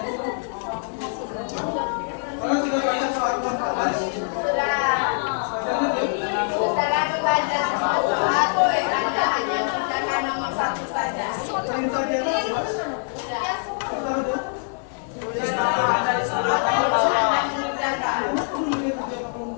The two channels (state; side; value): silent; right; 63 dB below the other